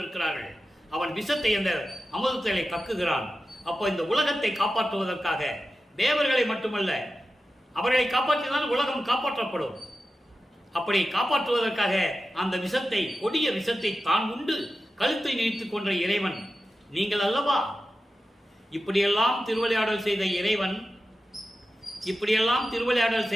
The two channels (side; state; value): both; normal; correlation 0.92